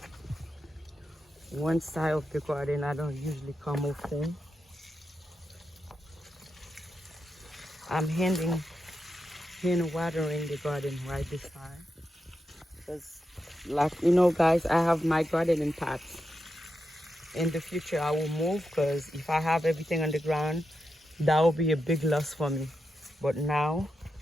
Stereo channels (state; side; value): normal; both; correlation 0.87